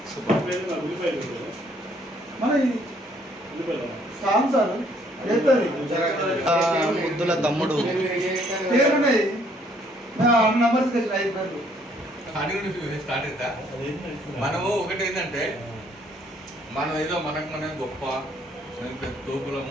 ముద్దుల తమ్ముడు. స్టార్ట్ అవుతా. మనము ఒకటి ఏంటంటే మనం ఏదో మనం గొప్ప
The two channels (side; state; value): both; normal; correlation 0.65